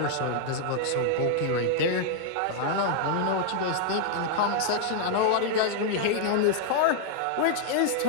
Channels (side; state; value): both; different; correlation -0.01